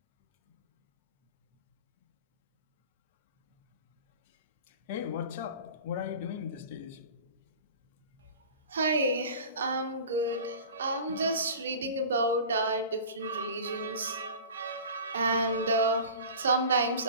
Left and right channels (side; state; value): both; inverted; correlation -0.39